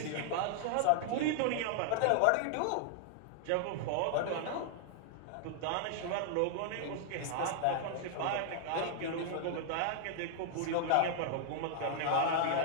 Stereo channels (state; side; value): different; both; correlation -0.01